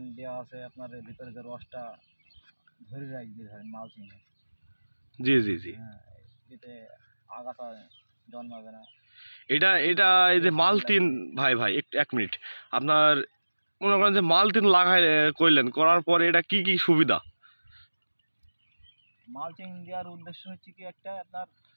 দেওয়া আছে, আপনার এর ভিতরে যে রসটা ধরে রাখবে ধরেন মালচিংয়ে। জি জি জি। হ্যাঁ, এতে আগাছা জন্মাবে না। এটা এটা এই যে মালতিন, ভাই ভাই একটু এক মিনিট। আপনার মনে করেন যে মালতিন লাগাই করলেন, করার পরে এটা কি কি সুবিধা? মালচিং দেওয়ার উদ্দেশ্য হচ্ছে কি, একটা আপনার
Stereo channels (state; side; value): inverted; both; correlation -1.00